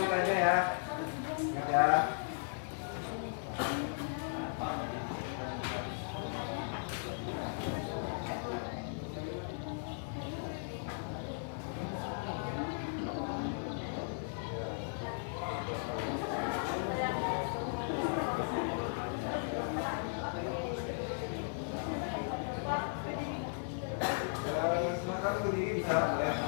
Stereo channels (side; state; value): right; silent; 53 dB below the other